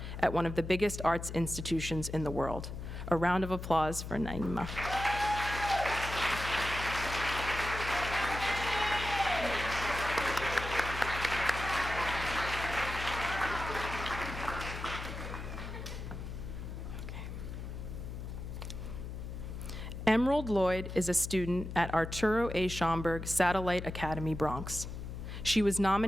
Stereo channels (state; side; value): noise; left; hum, 7 dB below the sound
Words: at one of the biggest arts institutions in the world." A round of applause for Naima. Emerald Lloyd is a student at Arturo A. Schomburg Satellite Academy, Bronx. She was